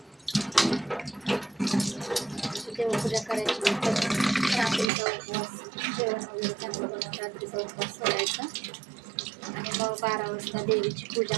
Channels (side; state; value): left; drops out; at 4.9 s